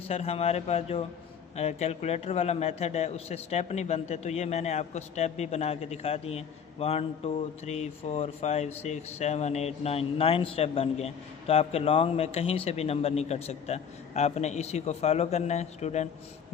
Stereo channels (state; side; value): quieter; right; 7.3 dB